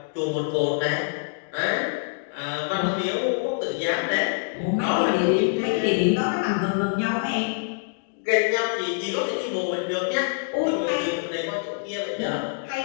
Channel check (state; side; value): silent; right; digital silence